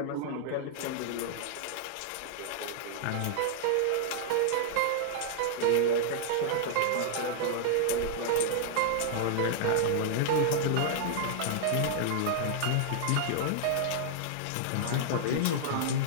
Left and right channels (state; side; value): different; both; correlation -0.01